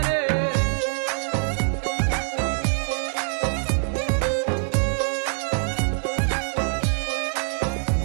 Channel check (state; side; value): silent; left; 56 dB below the other